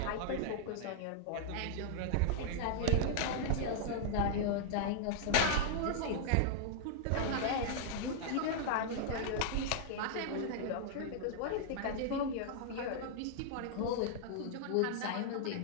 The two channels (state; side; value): different; both; correlation -0.01